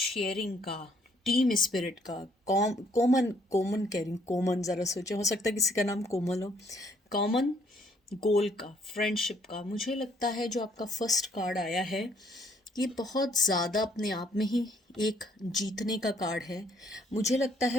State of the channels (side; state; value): both; normal; correlation 0.66